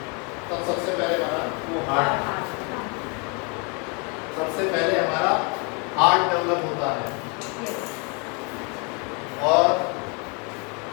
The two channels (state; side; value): quieter; right; 33.4 dB